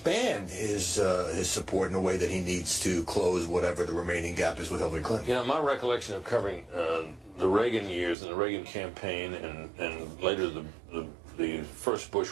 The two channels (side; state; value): left; drops out; at 8.2 s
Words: his support in a way that he needs to close whatever the remaining gap is with Hillary Clinton. My recollection of covering the Reagan years and the Reagan campaign and later the first